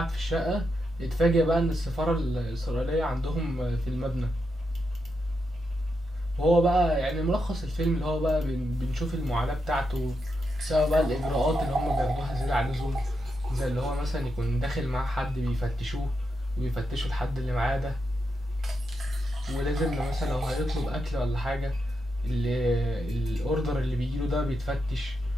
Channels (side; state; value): both; normal; correlation 0.85